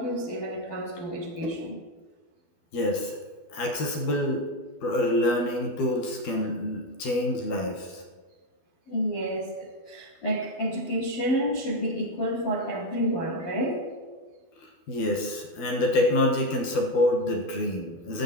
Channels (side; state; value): right; late; 12 ms